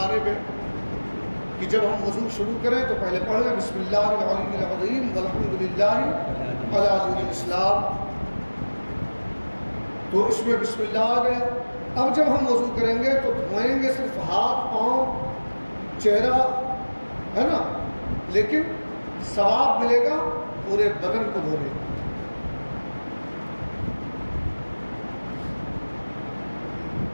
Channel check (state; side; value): inverted; both; correlation -1.00